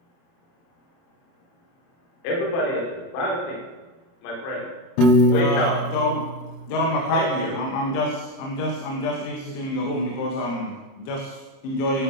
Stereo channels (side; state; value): right; late; 29 ms